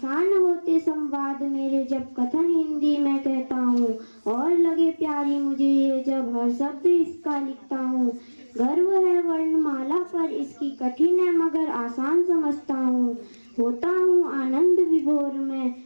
होते संवाद मेरे जब कथन हिंदी में कहता हूँ, और लगे प्यारी मुझे ये जब हर शब्द इसका लिखता हूँ। गर्व है वर्णमाला पर इसकी कठिन है मगर आसान समझता हूँ। होता हूँ आनंद विभोर में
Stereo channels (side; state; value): both; inverted; correlation -1.00